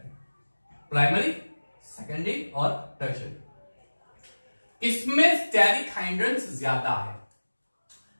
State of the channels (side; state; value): both; inverted; correlation -1.00